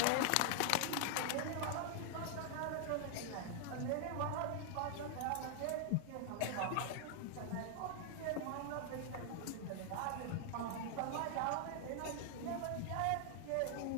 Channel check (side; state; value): both; different; correlation 0.00